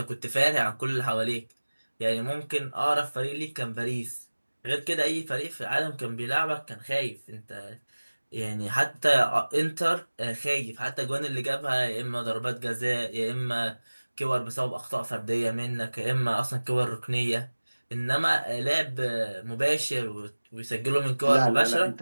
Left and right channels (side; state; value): both; inverted; correlation -1.00